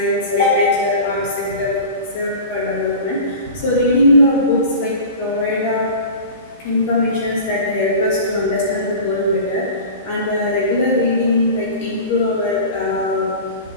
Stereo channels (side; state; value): both; inverted; correlation -0.35